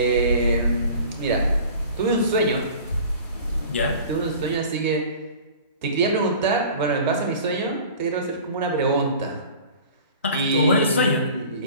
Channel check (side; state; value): both; inverted; correlation -0.43